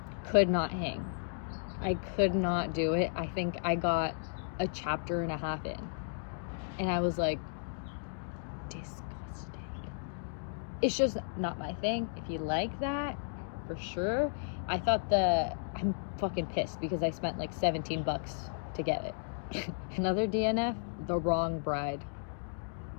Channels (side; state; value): right; silent; digital silence